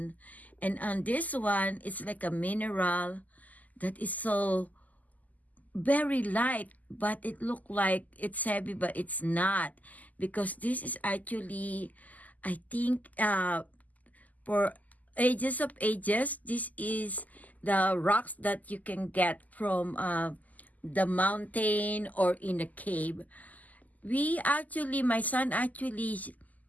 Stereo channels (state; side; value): late; right; 0.079 ms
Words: And on this one, it's like a mineral that is so very light, but it looked like it's heavy, but it's not, because this is actually, I think, for ages of ages, this is the rocks that you can get from the mountain or in a cave. My son actually